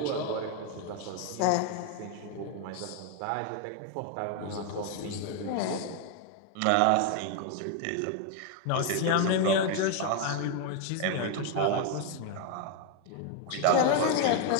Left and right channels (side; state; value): both; different; correlation 0.01